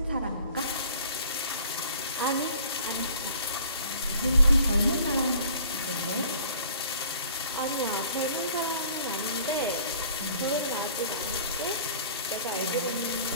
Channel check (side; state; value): both; inverted; correlation -0.52